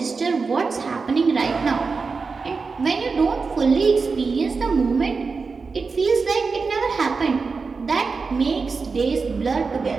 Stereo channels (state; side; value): quieter; left; 4.6 dB